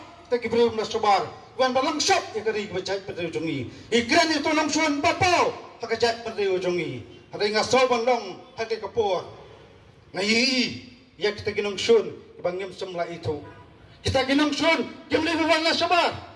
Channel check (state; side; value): identical; both; correlation 1.00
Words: ta kibru na sobar wan balang shop ye kari bercak berdew jongi ikran itu nang suan papau hakajat berdew jongi ada ngasol bandong hake ka por ngai ye kita ginong sun bangim semla itu kita ginong sun kemle wan na sobar